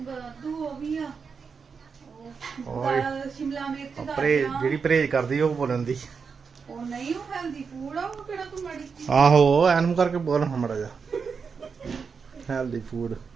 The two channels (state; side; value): quieter; left; 5.6 dB